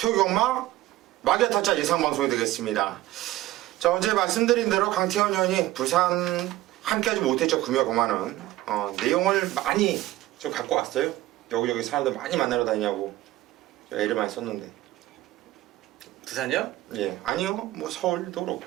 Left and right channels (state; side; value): quieter; left; 16.2 dB